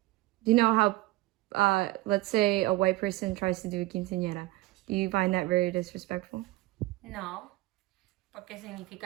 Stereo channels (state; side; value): quieter; left; 19.3 dB